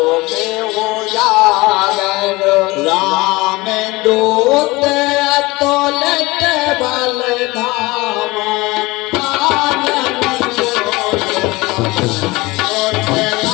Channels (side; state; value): right; quieter; 21.9 dB